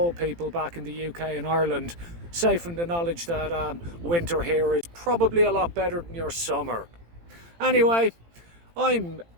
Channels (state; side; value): late; left; 18 ms